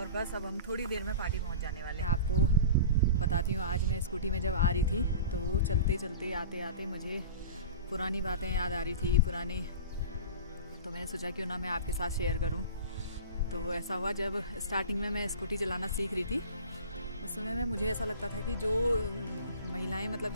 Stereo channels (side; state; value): both; inverted; correlation -0.36